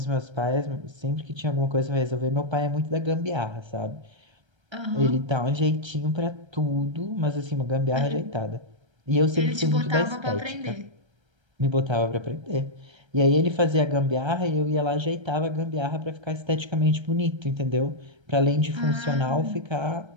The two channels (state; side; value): late; left; 1.3 ms